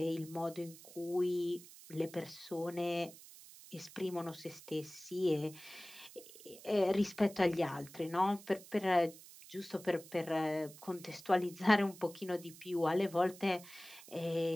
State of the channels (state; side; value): noise; right; hiss, 18 dB below the sound